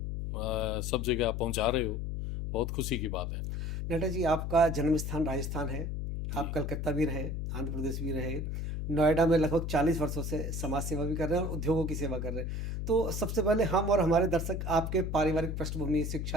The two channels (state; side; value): noise; left; hum, 3 dB below the sound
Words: सब जगह आप पहुंचा रहे हो, बहुत खुशी की बात है। नाहटा जी, आपका जन्म स्थान राजस्थान है, आप कलकत्ता भी रहे, आंध्र प्रदेश भी रहे, नोएडा में लगभग 40 वर्षों से समाज सेवा भी कर रहे हैं और उद्योगों की सेवा कर रहे हैं। तो सबसे पहले हम और हमारे दर्शक आपके पारिवारिक पृष्ठभूमि,